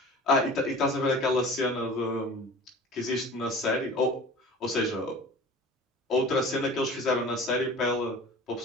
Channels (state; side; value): normal; both; correlation 0.40